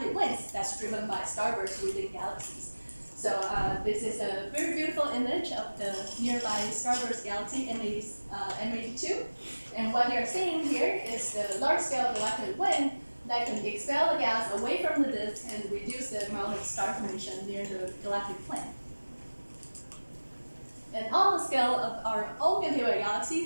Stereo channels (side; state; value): both; inverted; correlation -1.00